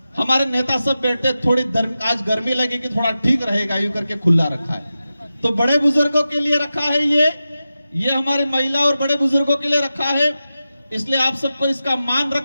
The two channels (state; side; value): inverted; both; correlation -0.92